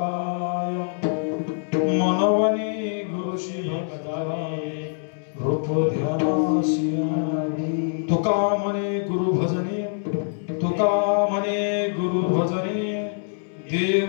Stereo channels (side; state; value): right; silent; 62 dB below the other